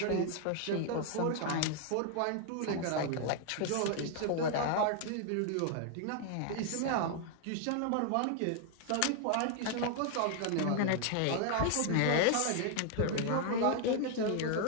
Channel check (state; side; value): different; both; correlation 0.00